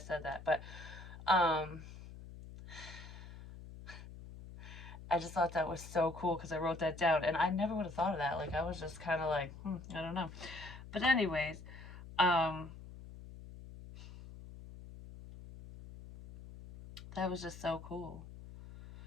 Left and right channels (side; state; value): left; noise; hum, 14 dB below the sound